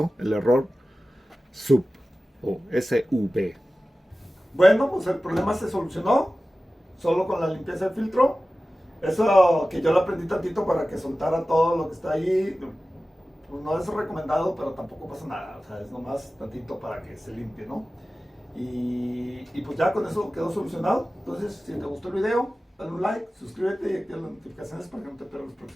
el error SUB o SUB. Bueno, pues el problema se solucionó solo con la limpieza del filtro. Eso que yo lo aprendí tantito para que soltara todo lo que está ahí, pues no es recomendado, pero tampoco pasa nada. O sea, es nomás tantito para que se limpie, ¿no? Y pues ya con eso quedó solucionado. Entonces, si te gustó el video, dale un like, suscríbete y activa las notificaciones para que no te pierdas los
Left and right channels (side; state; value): both; normal; correlation 0.96